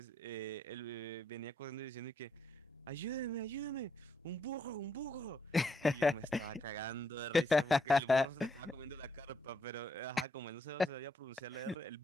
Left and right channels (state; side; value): normal; both; correlation 0.75